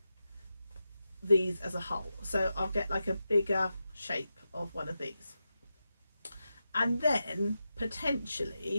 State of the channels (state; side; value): inverted; both; correlation -0.90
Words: these as a whole. So I'll get like a bigger shape of one of these, and then